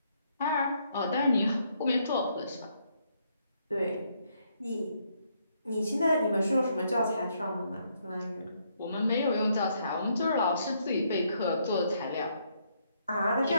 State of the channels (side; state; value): both; inverted; correlation -0.73